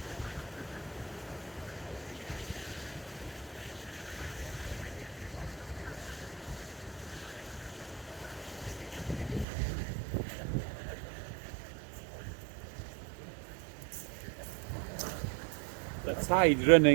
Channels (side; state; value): left; drops out; at 9.5 s